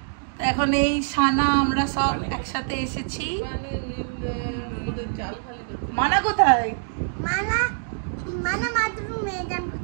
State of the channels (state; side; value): silent; left; 61 dB below the other